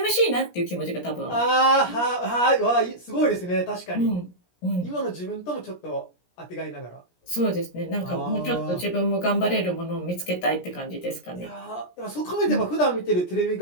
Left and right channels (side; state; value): right; late; 17 ms